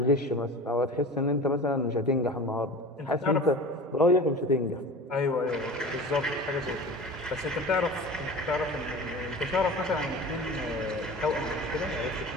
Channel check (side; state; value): both; normal; correlation 0.36